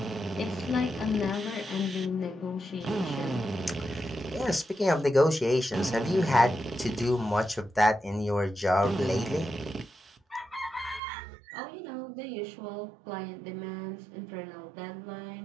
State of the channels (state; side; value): drops out; left; at 11.0 s